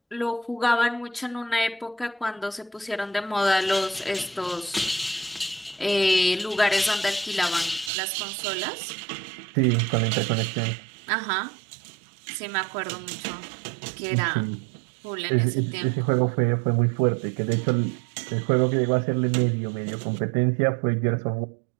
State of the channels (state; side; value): drops out; left; at 7.9 s